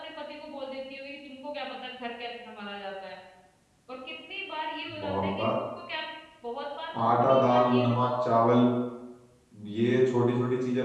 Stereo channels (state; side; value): identical; both; correlation 1.00